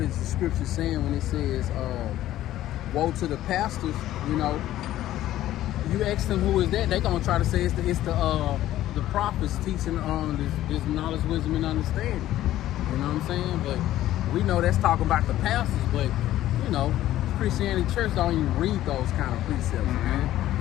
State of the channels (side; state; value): right; quieter; 13.8 dB